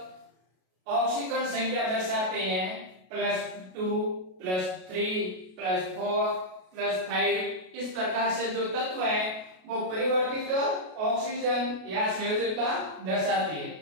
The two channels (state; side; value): late; left; 33 ms